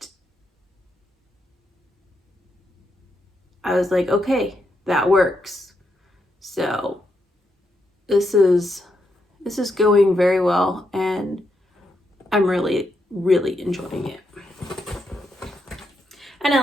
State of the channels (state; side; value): normal; both; correlation 0.81